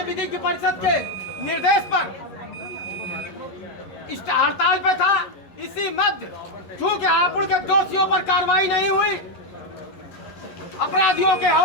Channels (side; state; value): right; late; 11 ms